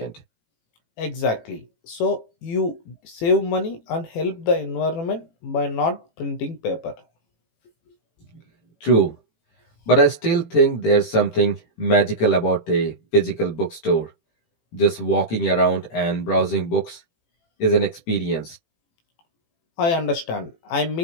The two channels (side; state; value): right; late; 18 ms